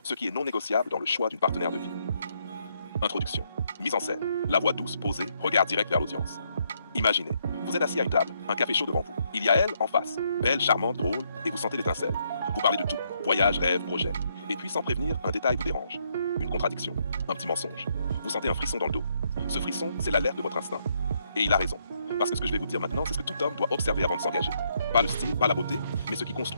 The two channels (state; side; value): inverted; both; correlation -0.74